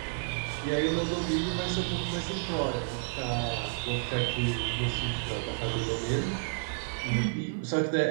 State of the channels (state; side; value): silent; left; digital silence